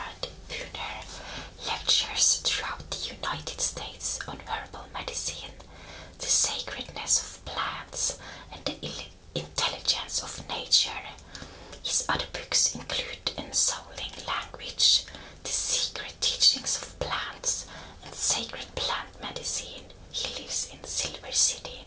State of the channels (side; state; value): both; identical; correlation 1.00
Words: Pooner lectures throughout the United States on herbal medicine, the sacredness of plants, and the intelligence of nature. His other books include Ensouling Language, The Secret Teachings of Plants, and Sacred Plant Medicine. He lives in Silver City,